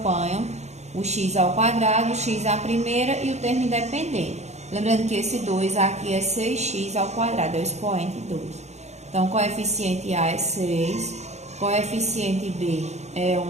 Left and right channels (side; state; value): left; late; 0.32 ms